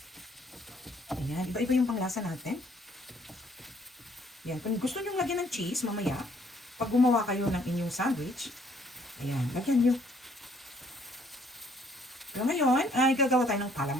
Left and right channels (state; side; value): normal; both; correlation 0.64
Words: Ayan, iba-iba yung panglasa natin. Yan, kung gusto nyo lagyan ng cheese mamaya, pag gumawa kayo ng inyong sandwich, ayan, lagyan nyo. Pero ngayon, ay gagawa tayo ng